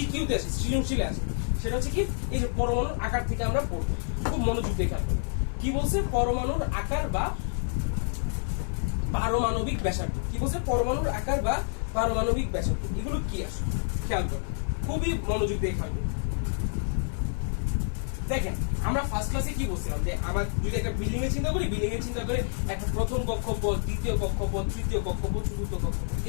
আসে, সৃজনশীলে আসে। সেটা হচ্ছে কি, এই যে পরমাণুর আকার থেকে আমরা পড়বো, খুব মনোযোগ দিয়ে খেয়াল করবো। কি বলছে? পরমাণুর আকার বা পারমাণবিক ব্যাসার্ধ। কি বলছে? পরমাণুর আকার বা পারমাণবিক ব্যাসার্ধ। এগুলো কি আসে খেয়াল করবো, খুবই মনোযোগ দিয়ে খেয়াল করবো। দেখেন আমরা ফার্স্ট ক্লাসে কি বলছিলাম যে আমার যদি একটা বিল্ডিং এর চিন্তা করি, বিল্ডিং এর চিন্তা করে একটা প্রথম কক্ষপথ, দ্বিতীয় কক্ষপথ, তৃতীয় কক্ষপথ, চতুর্থ কক্ষপথ,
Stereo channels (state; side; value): silent; right; digital silence